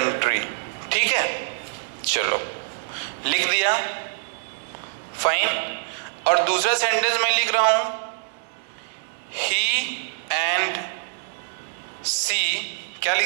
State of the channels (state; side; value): silent; left; digital silence